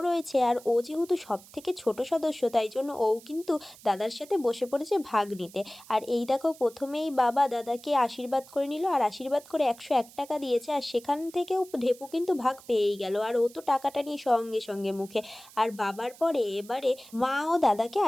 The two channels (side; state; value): right; noise; hiss, 21 dB below the sound